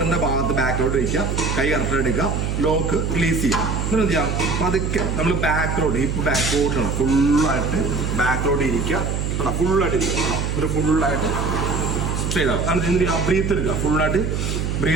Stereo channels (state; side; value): noise; right; hum, 1 dB below the sound